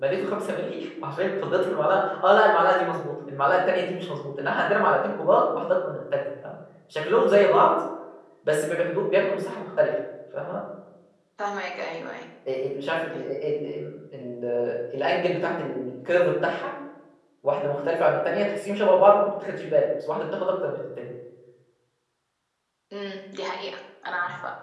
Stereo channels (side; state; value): both; identical; correlation 1.00